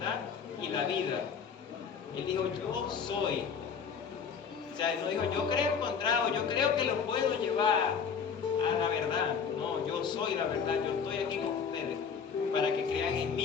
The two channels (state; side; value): quieter; right; 6.5 dB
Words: y la vida. Él dijo, yo soy. O sea, él no dijo, yo creo encontrado, yo creo que los puedo llevar a la verdad. No, yo soy la verdad, yo estoy aquí con ustedes para que crean en